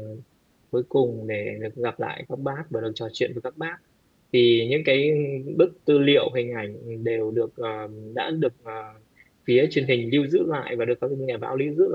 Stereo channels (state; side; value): identical; both; correlation 1.00